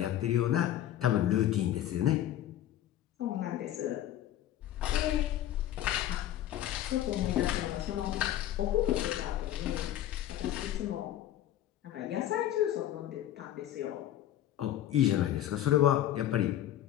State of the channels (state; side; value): quieter; right; 12.3 dB